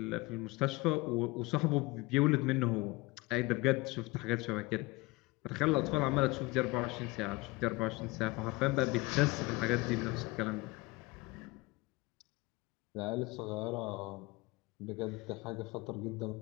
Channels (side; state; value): right; quieter; 23.2 dB